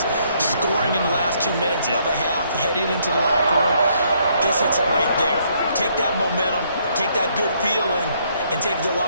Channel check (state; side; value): inverted; both; correlation -0.70